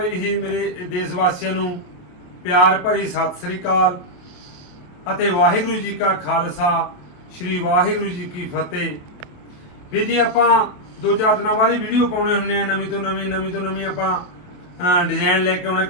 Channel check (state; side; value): late; right; 28 ms